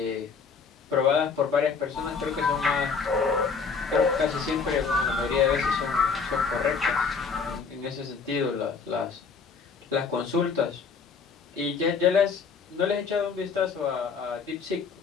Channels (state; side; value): quieter; right; 5.3 dB